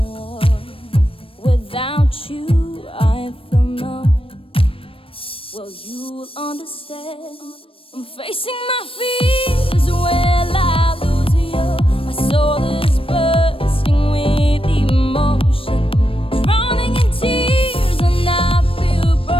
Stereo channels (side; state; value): right; late; 0.26 ms